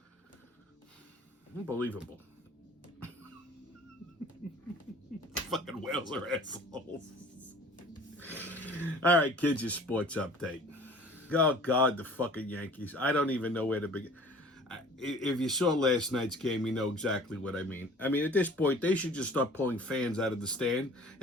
Unbelievable. Fucking whales are assholes. All right, kids, your sports update. Oh, God, the fucking Yankees. I don't even know where to begin. If you saw last night's game, you know exactly what I mean. I mean, at this point, they should just start pulling fans out of the stand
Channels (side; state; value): both; normal; correlation 0.47